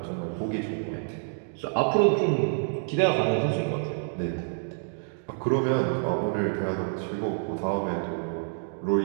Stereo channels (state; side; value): silent; left; digital silence